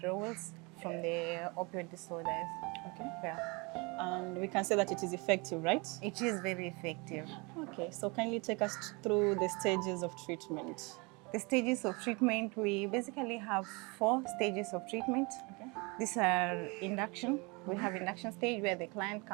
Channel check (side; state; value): left; quieter; 28.3 dB